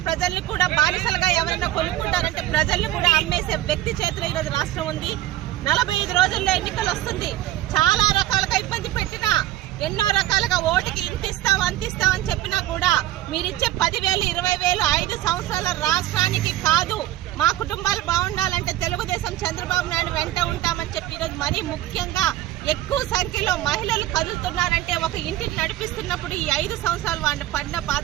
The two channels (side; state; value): left; quieter; 14.2 dB